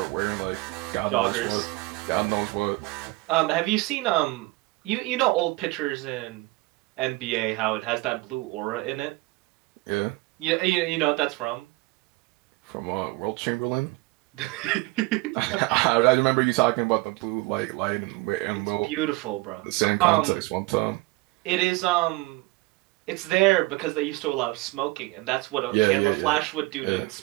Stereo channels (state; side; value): quieter; left; 22.7 dB